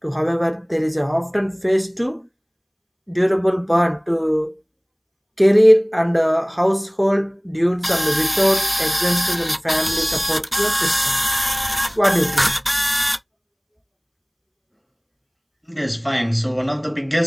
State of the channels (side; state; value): both; identical; correlation 1.00